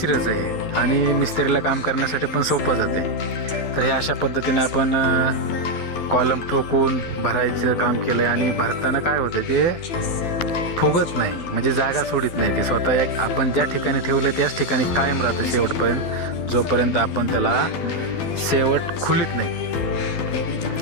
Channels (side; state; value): right; late; 12 ms